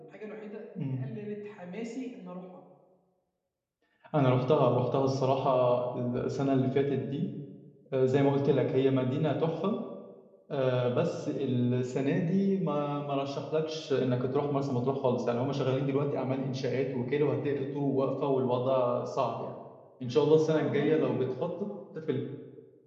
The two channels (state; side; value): identical; both; correlation 1.00